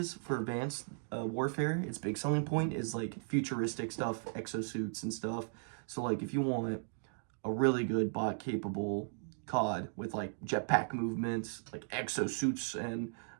for Advanced Warfare, its big selling point is like futuristic stuff, exosuits and stuff. So like if you want a really good bot capable COD with like jetpack movements, like exosuits and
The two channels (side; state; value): left; silent; digital silence